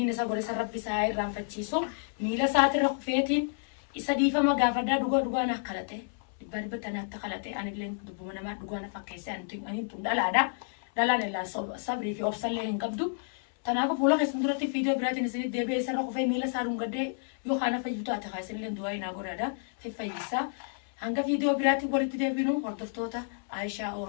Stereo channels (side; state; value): right; silent; 58 dB below the other